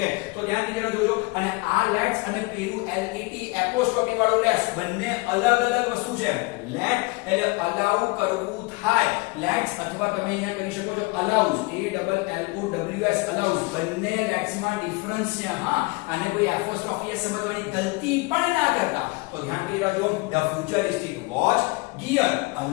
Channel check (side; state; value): right; quieter; 26.4 dB